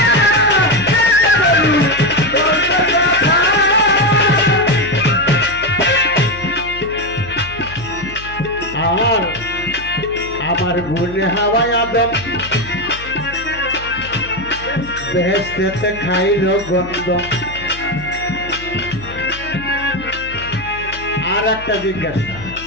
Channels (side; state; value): left; noise; hum, 15 dB below the sound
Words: আমার গুনে হাওয়ায় আদম বেহেশতে খাইল গন্ধ। আর একটা জিজ্ঞাসা